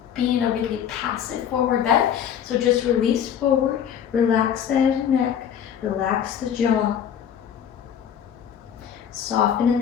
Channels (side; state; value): right; quieter; 8.9 dB